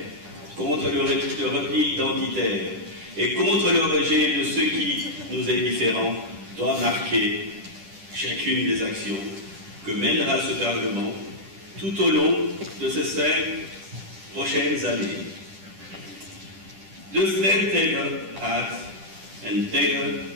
contre le repli identitaire et contre le rejet de ce qui nous est différent doit marquer chacune des actions que mènera ce Parlement tout au long de ces 5 prochaines années. De strijd tegen haat en tegen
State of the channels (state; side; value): late; left; 10 ms